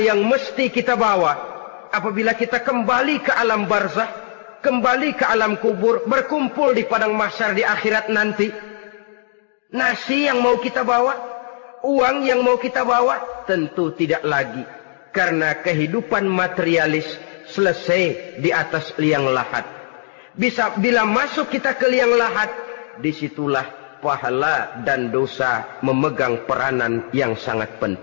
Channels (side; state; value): right; silent; digital silence